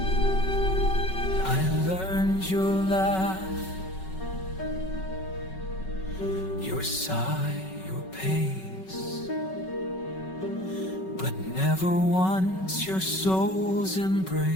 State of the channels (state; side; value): late; right; 5.3 ms